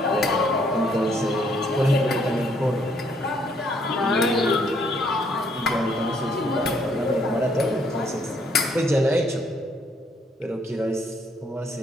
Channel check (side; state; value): both; normal; correlation 0.68